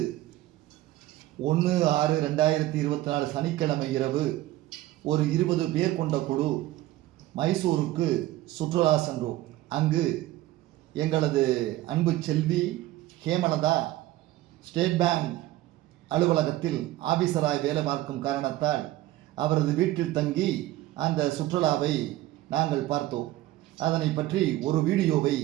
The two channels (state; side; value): quieter; left; 15.8 dB